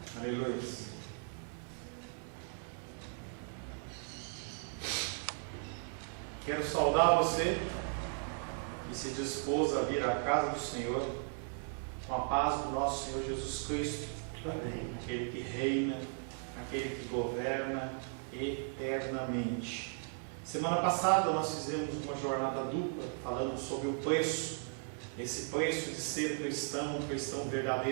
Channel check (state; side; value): silent; left; 53 dB below the other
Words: Aleluia. Quero saudar você que se dispôs a vir à casa do Senhor com a paz do nosso Senhor Jesus Cristo. Amém. Aquele que reina, aquele que governa eternamente. Semana passada nós fizemos uma jornada dupla falando sobre o preço, esse preço de ser cristão, um cristão